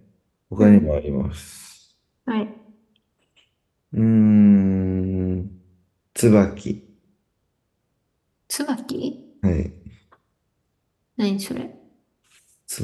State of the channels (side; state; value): both; identical; correlation 1.00